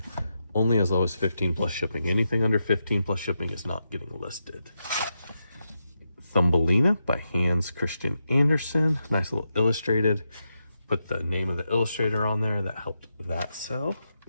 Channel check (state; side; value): inverted; both; correlation -0.86